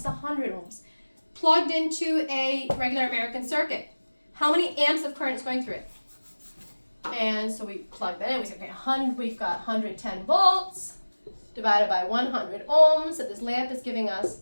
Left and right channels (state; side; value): inverted; both; correlation -1.00